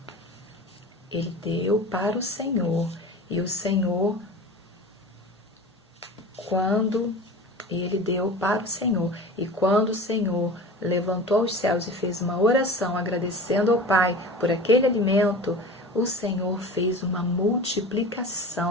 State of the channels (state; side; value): normal; both; correlation 0.35